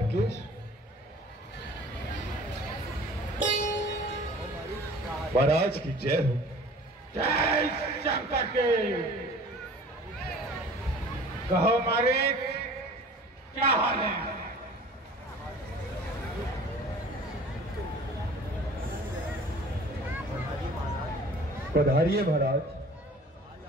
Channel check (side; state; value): both; normal; correlation 0.46